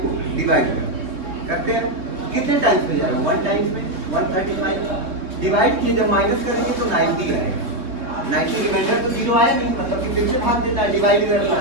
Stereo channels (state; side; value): late; left; 3.6 ms